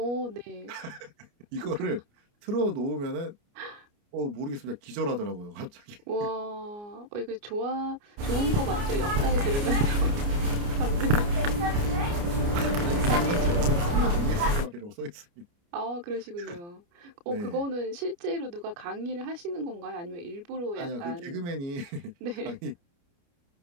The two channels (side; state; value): left; late; 29 ms